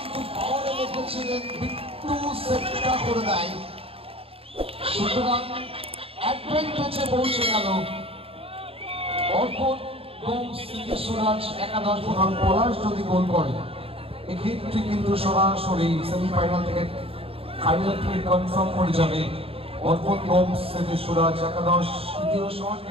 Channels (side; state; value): left; late; 0.27 ms